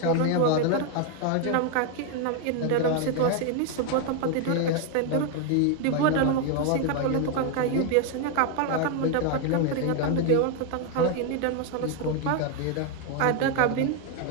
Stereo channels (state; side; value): different; both; correlation 0.01